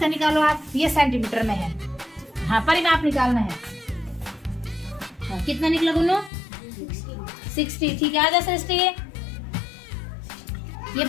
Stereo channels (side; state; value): right; drops out; at 6.3 s